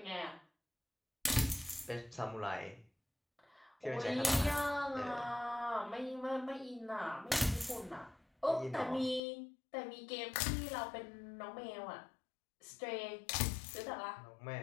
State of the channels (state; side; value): drops out; right; at 9.2 s